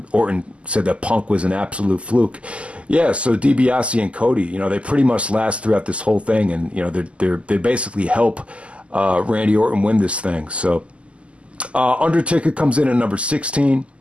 Orton said that Punk was an absolute fluke. Yeah. So DiBiase and Cody, you know, they pretty much last throughout this whole thing, and you know, they basically help Randy Orton win this thing. So Undertaker comes in at number 16.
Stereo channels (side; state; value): left; late; 0.057 ms